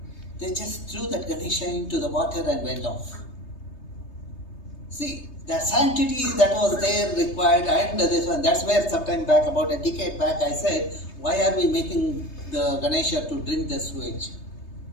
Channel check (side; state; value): right; late; 3.3 ms